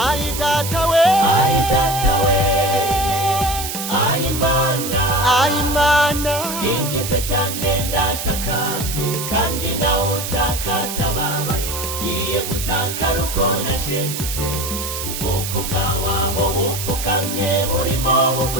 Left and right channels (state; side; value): noise; right; hiss, 5 dB below the sound